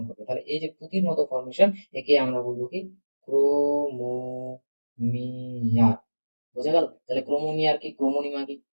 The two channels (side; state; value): both; inverted; correlation -1.00